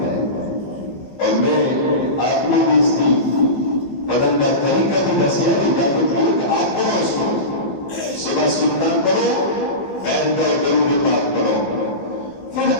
ہے اور میں آپ نے بھی اس کی بدن کا طریقہ بھی دسیا کہ آپ پڑھو اس کو صبح سننا پڑھو بیٹھ کر درود پاک پڑھو پھر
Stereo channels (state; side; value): late; right; 15 ms